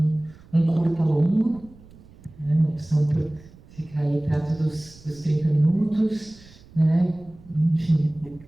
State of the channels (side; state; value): right; noise; rumble, 23 dB below the sound